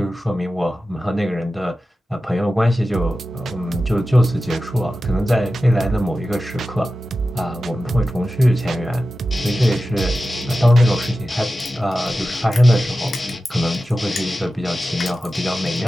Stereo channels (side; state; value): both; normal; correlation 0.93